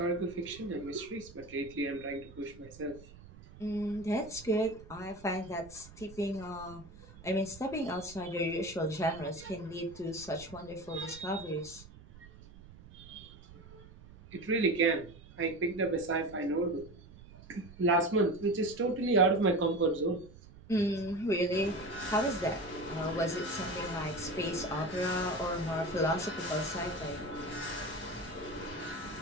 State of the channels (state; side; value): noise; right; rumble, 19 dB below the sound